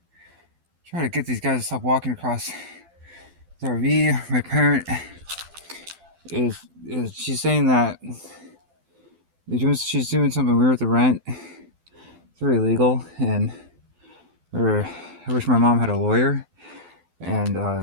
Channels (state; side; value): late; left; 12 ms